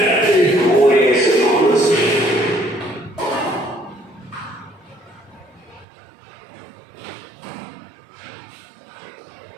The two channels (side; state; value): left; drops out; at 5.9 s